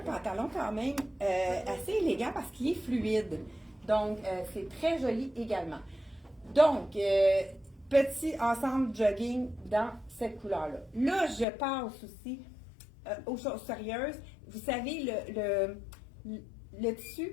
pantalon quand même assez élégant parce qu'il est fluide. Donc, c'est très joli également. Donc, petit ensemble jogging dans cette couleur-là. Là, je passe aussi aux choses sérieuses. Vous savez, le tissu,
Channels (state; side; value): drops out; right; at 11.5 s